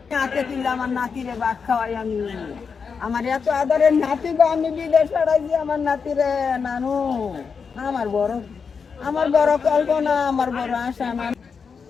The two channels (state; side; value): quieter; right; 5.7 dB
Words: হাতে তুললে আমার নাতিরে ভাত খাওয়াই আমি, আমার এত আদরের নাতি গো, আমি বিদেশ পাঠাইছি আমার নাতিরে, নানু আমার বড় কল্পনা, আমার বড় আশা।